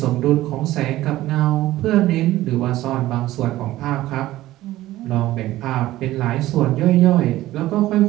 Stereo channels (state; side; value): quieter; left; 15.7 dB